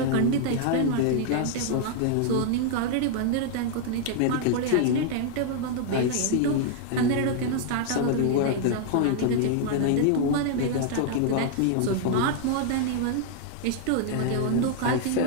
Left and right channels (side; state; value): both; different; correlation 0.00